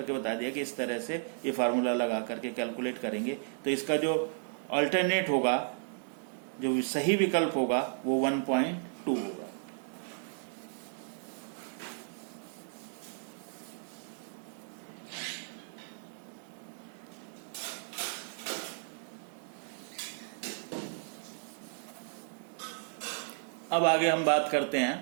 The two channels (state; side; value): silent; left; digital silence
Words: बता दिया कि इस तरह से ये फार्मूला लगा करके कैलकुलेट करेंगे तो इसका जो अल्टरनेट होगा, जो सही विकल्प होगा वो 1.2 होगा। अब आगे हम बात करते